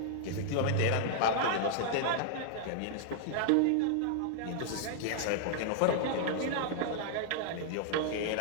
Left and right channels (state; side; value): different; both; correlation -0.01